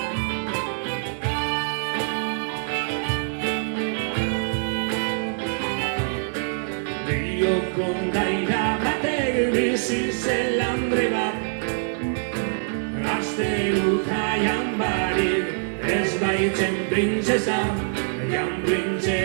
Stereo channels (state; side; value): silent; left; digital silence